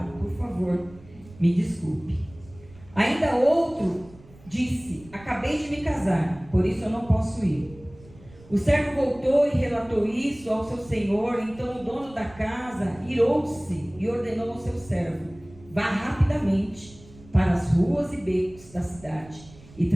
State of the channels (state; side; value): noise; right; rumble, 22 dB below the sound